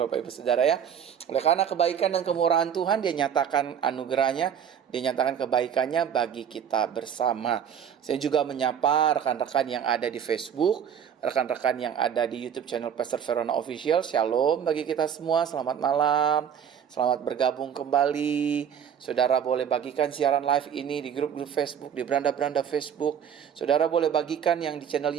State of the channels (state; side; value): quieter; left; 8.4 dB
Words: Ibu Saudara ya. Oleh karena kebaikan dan kemurahan Tuhan, Dia nyatakan anugerahnya, Dia nyatakan kebaikannya bagi kita bersama. Saya juga menyapa rekan-rekan yang ada di Facebook, rekan-rekan yang ada di YouTube channel Pastor Verona Official. Shalom bagi kita semua, selamat malam. Selamat bergabung kembali. Saudara boleh bagikan siaran live ini di grup-grup Facebook, di beranda-beranda Facebook. Saudara boleh bagikan yang di channel